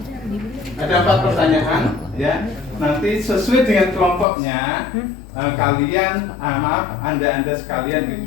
Ada 4 pertanyaan, ya. Nanti sesuai dengan kelompoknya, kalian, anda sekalian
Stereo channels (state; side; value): drops out; right; at 4.2 s